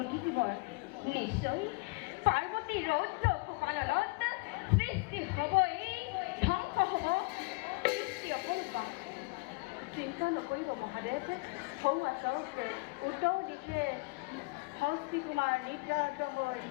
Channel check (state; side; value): quieter; right; 26.9 dB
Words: জীবন। নিশ্চয় পার্বতী রৌদ্র কপালত সৃষ্টি হব এই ধ্বংস হব সৃষ্টি অপূর্বা। চিন্তা নকৰিব মহাদেৱ, সৌ আচক উত্তৰ দিশে হস্তি কুমাৰ নিদ্ৰাৰত হৈ